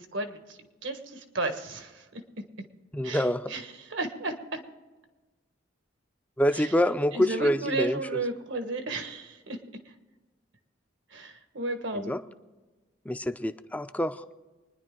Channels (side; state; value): both; normal; correlation 0.60